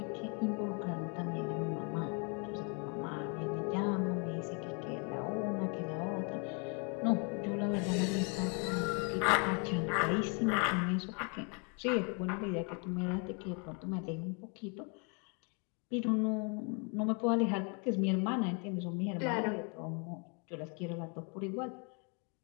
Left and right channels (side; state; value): right; quieter; 36.1 dB